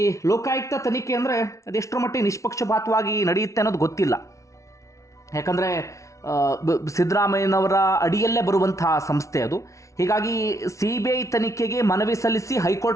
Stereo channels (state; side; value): late; right; 0.15 ms